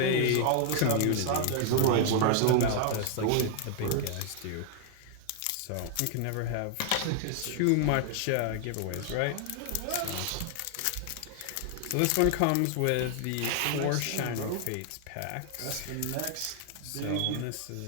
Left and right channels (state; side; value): different; both; correlation 0.00